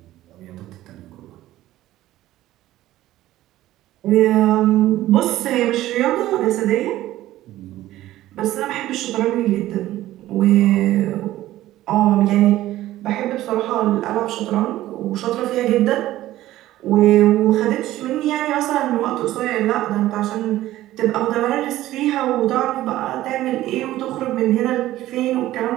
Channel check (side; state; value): left; quieter; 14.9 dB